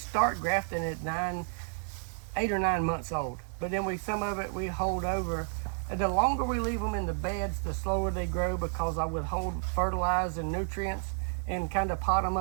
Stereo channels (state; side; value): silent; left; 57 dB below the other